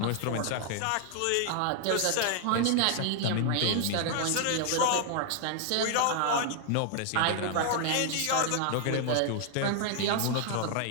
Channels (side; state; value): both; different; correlation 0.00